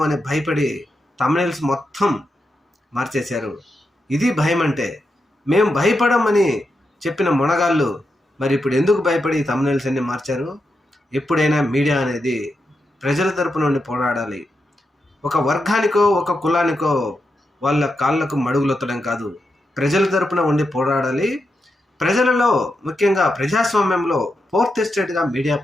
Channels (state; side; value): normal; both; correlation 0.86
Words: అని భయపడి థంబ్నెయిల్స్ మొత్తం మార్చేశారు. ఇది భయం అంటే. మేము భయపడమని చెప్పిన మునగాళ్ళు మరి ఇప్పుడు ఎందుకు భయపడి థంబ్నెయిల్స్ అన్ని మార్చారు? ఎప్పుడైనా మీడియా అనేది ప్రజల తరపు నుండి పోరాడాలి. ఒక వర్గానికో ఒక కులానికో వాళ్ళ కాళ్ళకు మడుగులొత్తడం కాదు, ప్రజల తరపున ఉండి పోరాడాలి. ప్రజలలో ముఖ్యంగా ప్రజాస్వామ్యంలో ఫోర్త్ ఎస్టేట్గా మీడియా